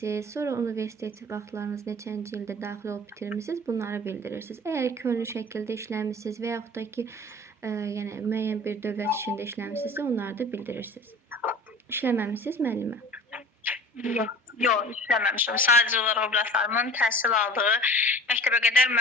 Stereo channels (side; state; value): both; normal; correlation 0.42